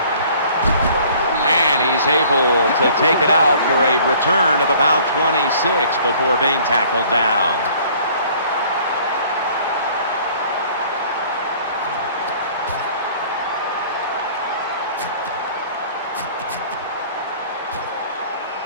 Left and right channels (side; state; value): both; inverted; correlation -0.53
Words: He's able to take it out for a return of about 26 before being tackled down.